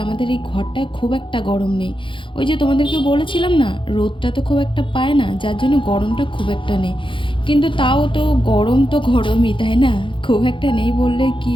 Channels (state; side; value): late; right; 0.24 ms